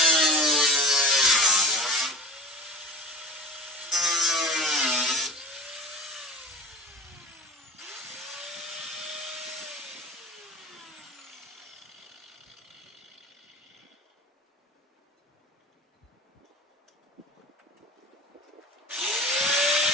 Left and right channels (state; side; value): normal; both; correlation 0.37